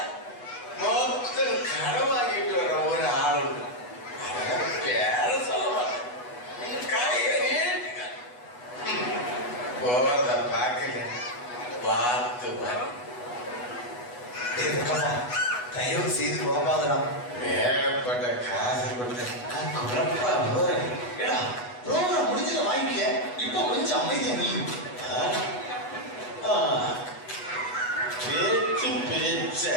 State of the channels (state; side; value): late; right; 8.2 ms